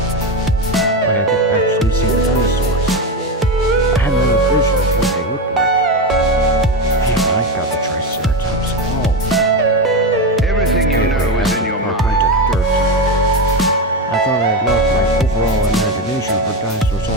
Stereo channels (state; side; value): normal; both; correlation 0.15